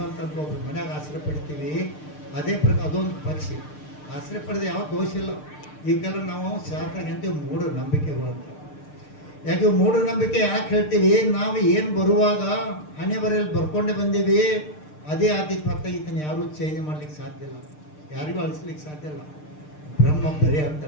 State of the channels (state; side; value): late; right; 6.6 ms